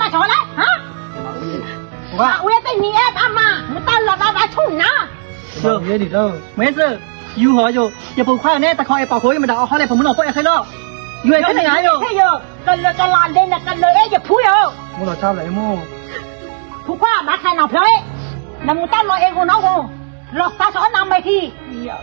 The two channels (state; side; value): silent; left; digital silence